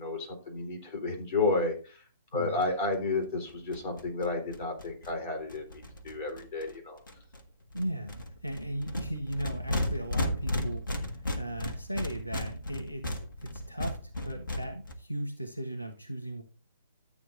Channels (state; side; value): inverted; both; correlation -0.53